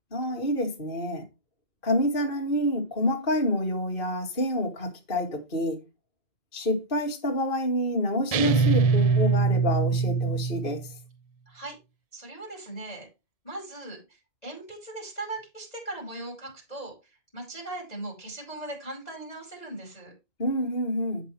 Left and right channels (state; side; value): late; right; 2.5 ms